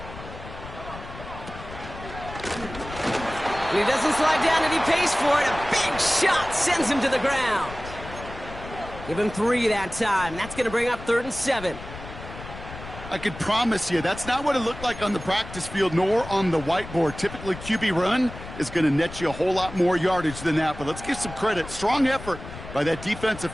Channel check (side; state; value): left; noise; rumble, 13 dB below the sound